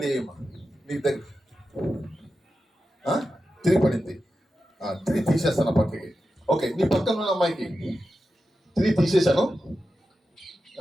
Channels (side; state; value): both; normal; correlation 0.91